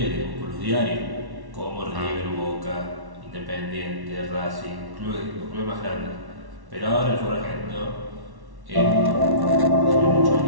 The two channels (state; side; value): late; left; 1.1 ms